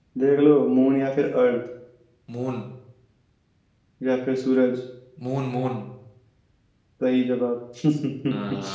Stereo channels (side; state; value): both; identical; correlation 1.00